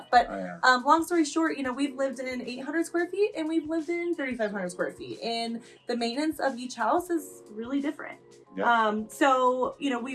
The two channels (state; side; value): identical; both; correlation 1.00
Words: But long story short, we've lived in 800 square feet and we've lived in 3,500 square feet, and the maintenance of each house is really different. Yeah.